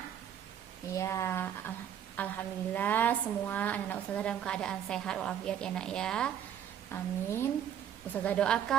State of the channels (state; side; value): quieter; left; 9.6 dB